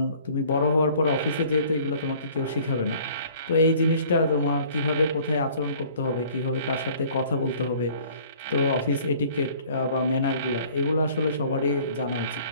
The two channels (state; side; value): inverted; both; correlation -0.53